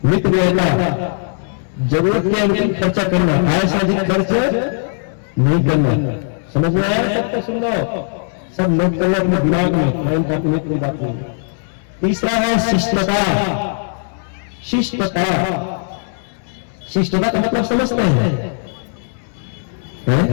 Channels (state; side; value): silent; right; 67 dB below the other